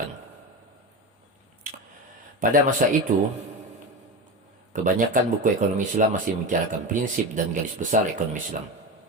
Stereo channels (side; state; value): both; normal; correlation 0.22